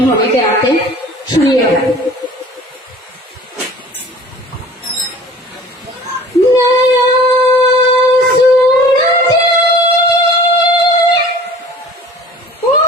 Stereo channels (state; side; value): normal; both; correlation 0.46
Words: होने के नाते सुनिएगा। नया